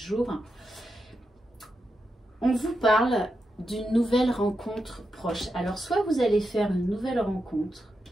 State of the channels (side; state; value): both; normal; correlation 0.87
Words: On vous parle d'une nouvelle rencontre proche. Alors, soit vous allez faire une nouvelle rencontre,